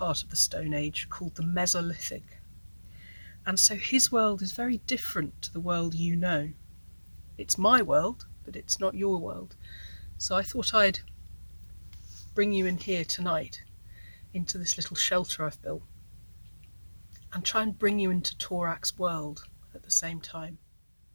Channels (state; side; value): inverted; both; correlation -1.00